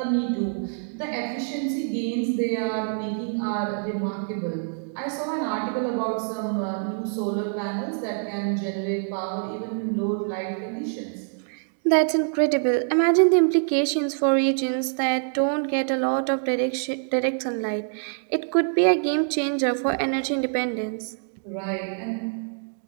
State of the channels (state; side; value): silent; left; digital silence